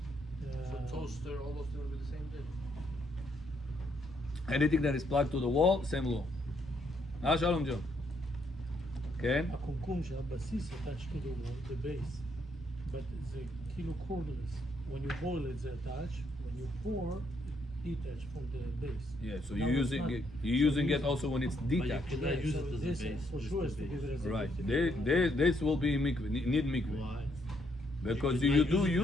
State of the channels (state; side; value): normal; both; correlation 0.73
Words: So toaster, all those things will be the same thing. Anything that is plugged to the wall, same law. Shalom Joe. Okay. הקומקום שהבסיס attached to the wall, the base, but זה כאילו cordless. When you boil it, זה attached. When you pour, it detached from the base. Yeah. So Now you're it's using not. it. You're using So it also when it's But you detached. cannot use so it as this a base. for Just sure the is to give base. it as a Right. base. This will be mikveh. Need mikveh. Why? Because You you cannot do